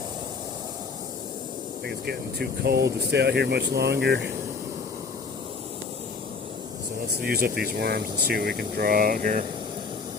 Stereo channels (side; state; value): right; quieter; 4.7 dB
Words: think it's getting too cold to stay out here much longer. So let's use up these worms and see what we can draw out here